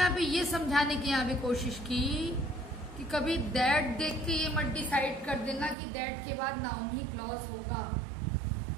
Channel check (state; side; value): drops out; left; at 5.8 s